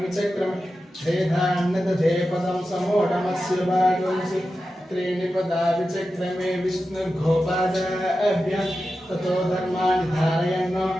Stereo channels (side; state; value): both; normal; correlation 0.92